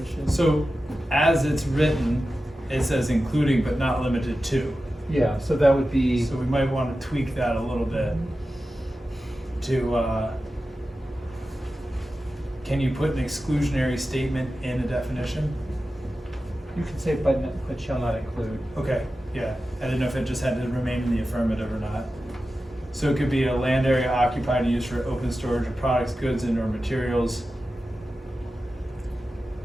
So as it's written, it says including but not limited to. Yeah, so that would be, So we might want to tweak that a little bit to, can you put an exclusionary statement in a definition? you could say but shall not include. Okay, yeah, I didn't know if it just had to remain in the affirmative or not. So it could be a land area occupied and used for open storage of products, goods, and/or materials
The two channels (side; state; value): both; normal; correlation 0.93